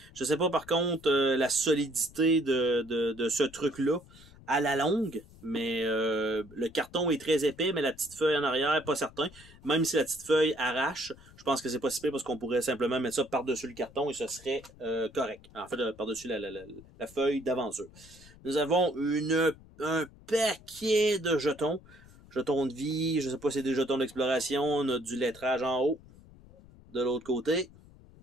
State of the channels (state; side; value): noise; left; rumble, 22 dB below the sound